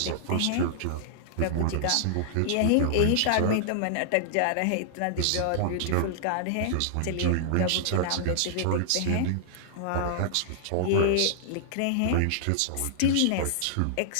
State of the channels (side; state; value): both; different; correlation -0.01